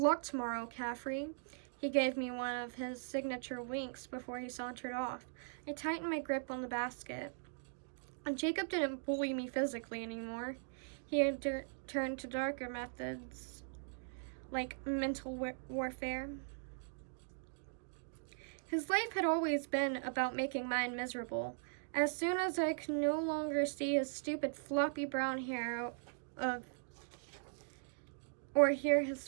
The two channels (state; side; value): silent; left; digital silence